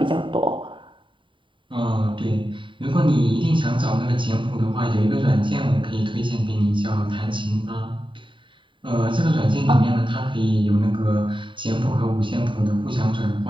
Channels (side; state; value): left; late; 0.24 ms